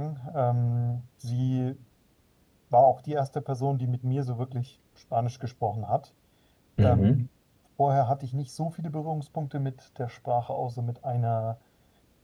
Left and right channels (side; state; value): both; identical; correlation 1.00